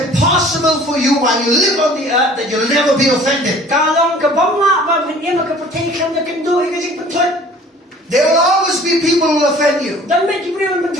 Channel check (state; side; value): normal; both; correlation 0.50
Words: for you while you live on the earth that you'll never be offended. There will always be people who will offend you,